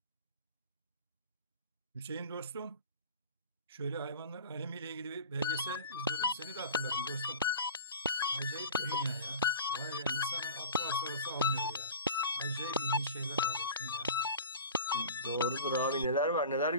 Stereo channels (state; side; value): inverted; both; correlation -0.38